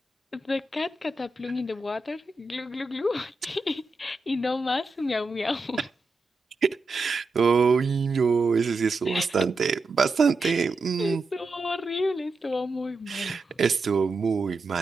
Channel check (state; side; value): quieter; left; 3.3 dB